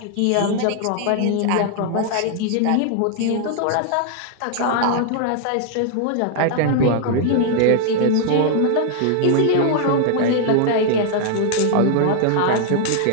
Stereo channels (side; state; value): both; different; correlation 0.00